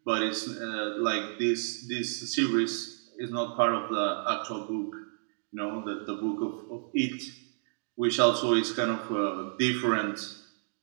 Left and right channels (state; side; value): silent; left; digital silence